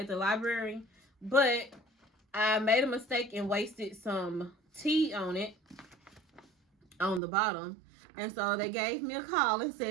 the library, but I made a mistake and wasted some tea on it on the bottom. And so they gave me a call and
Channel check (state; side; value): drops out; left; at 7.2 s